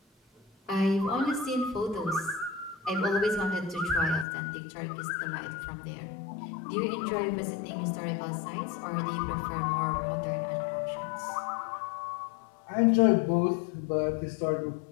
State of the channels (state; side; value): drops out; right; at 4.2 s